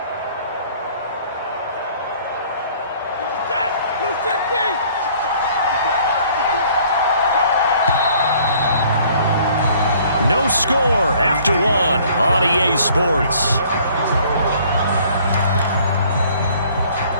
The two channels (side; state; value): both; inverted; correlation -0.56